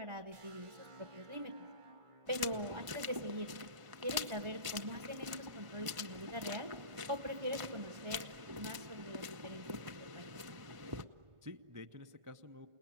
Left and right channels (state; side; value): late; left; 1.5 ms